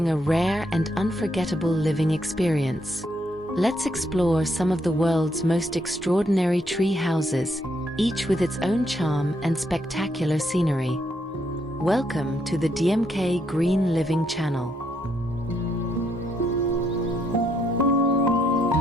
a rare and unforgettable living experience. Let's explore some of the world's most extraordinary tree houses, each with its own charm and spectacular scenery. Welcome to the DMK Green Living channel.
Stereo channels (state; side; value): normal; both; correlation 0.75